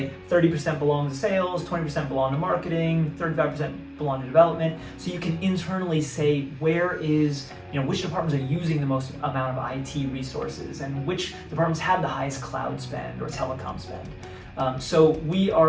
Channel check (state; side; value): identical; both; correlation 1.00